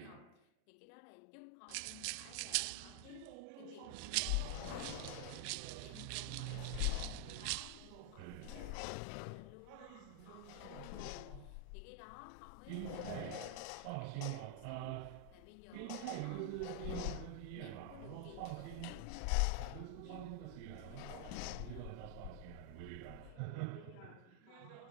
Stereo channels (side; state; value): both; different; correlation 0.00